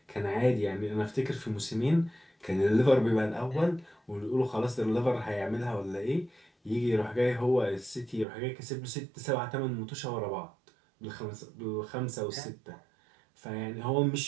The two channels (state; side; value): drops out; left; at 8.2 s